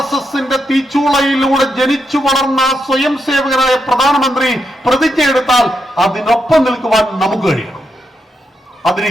തീച്ചൂളയിലൂടെ ജനിച്ചു വളർന്ന സ്വയം സേവകനായ പ്രധാനമന്ത്രി പ്രതിജ്ഞയെടുത്താൽ അതിനൊപ്പം നിൽക്കുവാൻ നമുക്ക് കഴിയണം. അതിന്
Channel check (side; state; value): both; normal; correlation 0.83